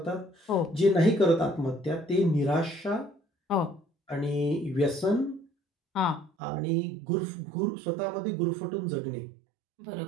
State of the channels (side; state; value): left; drops out; at 6.3 s